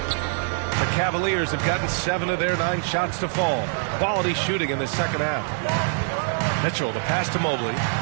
The Cavaliers have gotten 7 of their 9 shots to fall. Quality shooting in the second half. Mitchell, the pass to Mobley.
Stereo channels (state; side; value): silent; left; 57 dB below the other